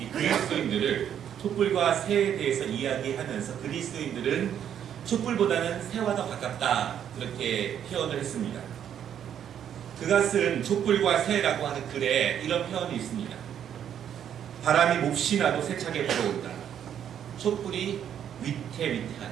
그리스도인들을 촛불과 새에 대해서 이야기하면서 그리스도인들은 촛불보다는 새와 더 가깝다, 그렇게 표현을 했습니다. 그가 쓴 촛불과 새라고 하는 글에 이런 표현이 있습니다. 바람이 몹시 나도 세차게 불어온다. 촛불이 위태위태하다.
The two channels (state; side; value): quieter; left; 9.4 dB